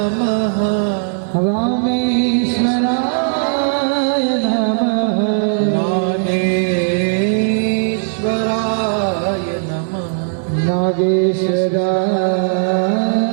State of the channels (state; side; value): silent; left; digital silence